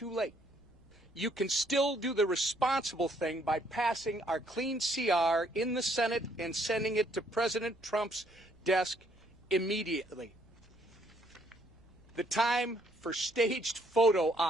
late. You can still do the responsible thing by passing our clean CR in the Senate and sending it to President Trump's desk immediately. The time for staged photo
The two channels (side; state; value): right; noise; rumble, 27 dB below the sound